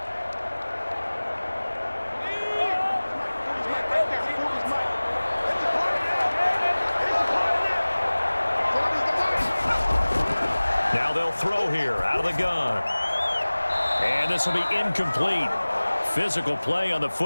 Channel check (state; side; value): inverted; both; correlation -1.00